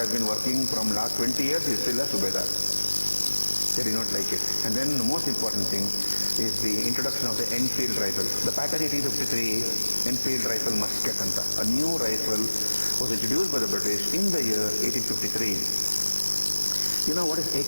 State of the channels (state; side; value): inverted; both; correlation -1.00